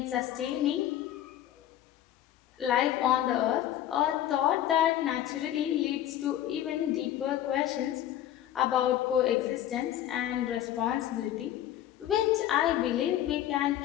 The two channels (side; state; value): right; quieter; 12.0 dB